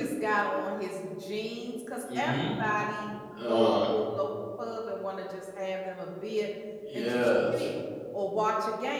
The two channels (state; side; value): identical; both; correlation 1.00